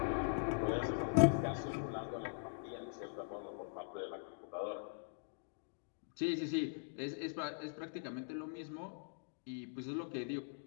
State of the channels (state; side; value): silent; right; digital silence